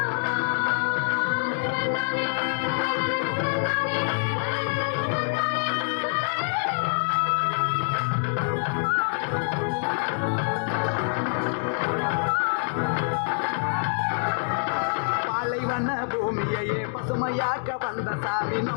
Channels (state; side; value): silent; right; 61 dB below the other